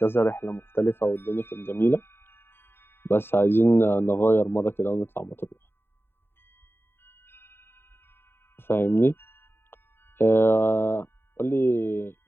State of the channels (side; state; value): right; late; 0.11 ms